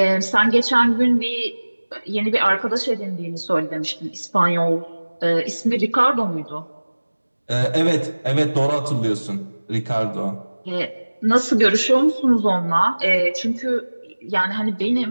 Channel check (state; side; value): inverted; both; correlation -1.00